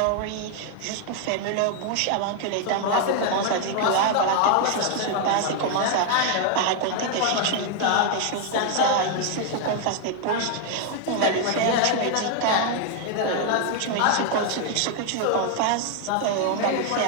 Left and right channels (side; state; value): both; different; correlation 0.00